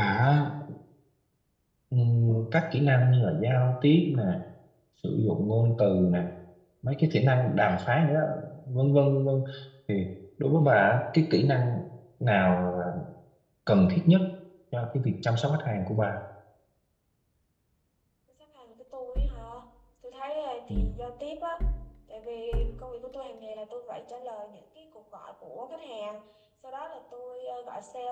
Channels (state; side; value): identical; both; correlation 1.00